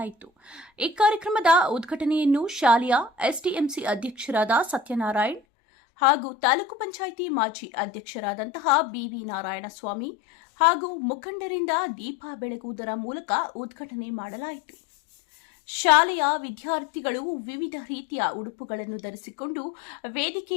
ಈ ಕಾರ್ಯಕ್ರಮದ ಉದ್ಘಾಟನೆಯನ್ನು ಶಾಲೆಯ ಎಸ್ಡಿಎಂಸಿ ಅಧ್ಯಕ್ಷರಾದ ಸತ್ಯನಾರಾಯಣ್ ಹಾಗೂ ತಾಲೂಕು ಪಂಚಾಯಿತಿ ಮಾಜಿ ಅಧ್ಯಕ್ಷರಾದಂತಹ ಬಿವಿ ನಾರಾಯಣಸ್ವಾಮಿ ಹಾಗೂ ಮುಖಂಡರಿಂದ ದೀಪ ಬೆಳಗುವುದರ ಮೂಲಕ ಉದ್ಘಾಟನೆ ಮಾಡಲಾಯಿತು. ಶಾಲೆಯ ವಿದ್ಯಾರ್ಥಿಗಳು ವಿವಿಧ ರೀತಿಯ ಉಡುಪುಗಳನ್ನು ಧರಿಸಿಕೊಂಡು ವೇದಿಕೆ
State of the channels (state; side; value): drops out; right; at 5.4 s